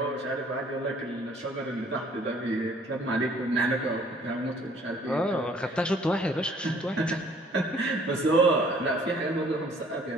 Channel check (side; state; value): both; normal; correlation 0.58